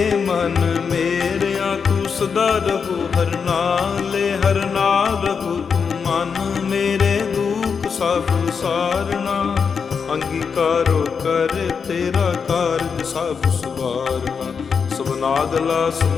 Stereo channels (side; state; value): right; quieter; 6.0 dB